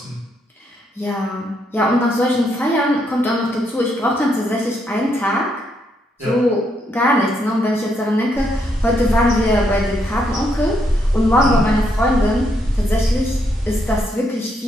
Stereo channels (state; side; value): normal; both; correlation 0.76